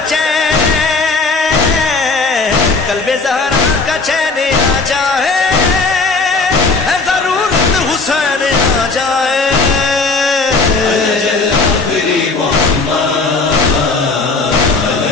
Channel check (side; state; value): right; quieter; 3.8 dB